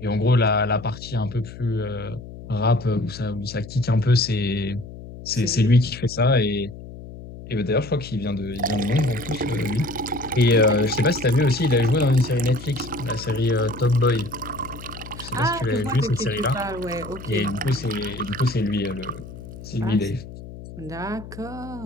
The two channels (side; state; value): left; noise; hum, 14 dB below the sound